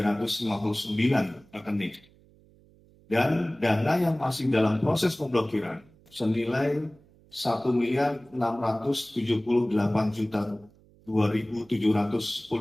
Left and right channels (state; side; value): noise; right; hum, 28 dB below the sound